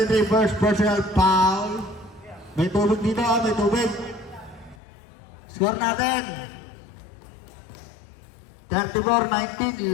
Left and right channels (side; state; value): right; drops out; at 4.8 s